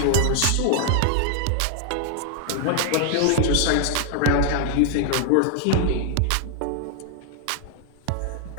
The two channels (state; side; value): different; both; correlation 0.00